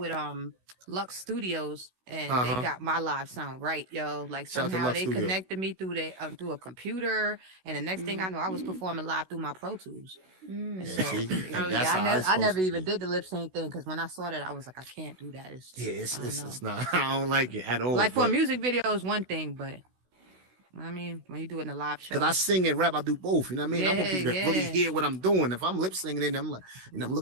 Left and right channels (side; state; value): left; late; 16 ms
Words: Lux Studios and they got my live sound right, yo. Like Shout out to somehow Lux they Studio. connected me through a computer, and the next thing I know, I was performing live through my Pro Tools. And so, see? oh, That's how I it's never supposed to even did the lip sync thing because when I saw that, I was like, I can't do that. It's it's not. I don't like it at all. like for a but- music video is one thing, but I mean, when you do it in a live show, Cause I sing and rap, I do both. You know what I mean? I want people to really Yeah. hear what I'm doing. If I'm lip singing, and I'm like, you know, I'm